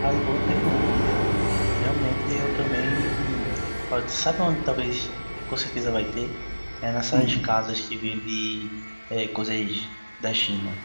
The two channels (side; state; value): both; inverted; correlation -1.00